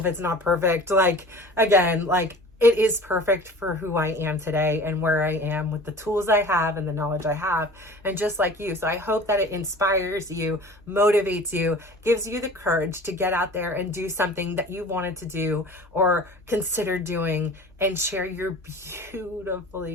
it's not perfect. Like, again, like it is perfect for who I am today and where I am with the tools I have and the knowledge I have, and just like you. So I hope that it inspires you, motivates you, gives you the courage to get out there and do something that you wanted to do or consider doing and share your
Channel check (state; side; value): normal; both; correlation 0.41